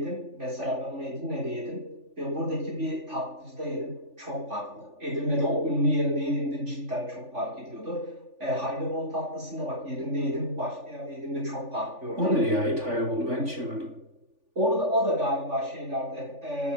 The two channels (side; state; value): left; late; 3.4 ms